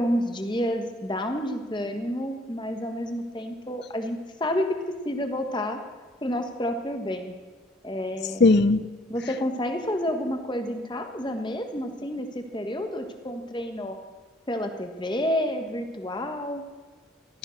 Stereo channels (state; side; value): normal; both; correlation 0.60